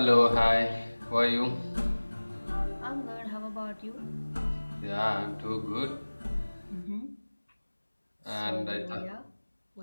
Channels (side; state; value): both; inverted; correlation -1.00